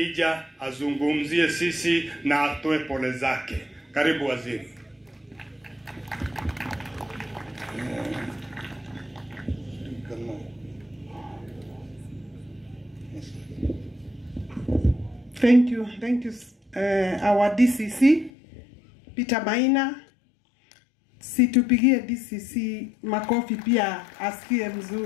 azungumzie sisi na atoe pole zake. Karibu waziri. Thank you, our DCC Peter Maina. Situpigie DCC makofi pia asikie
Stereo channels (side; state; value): right; drops out; at 18.3 s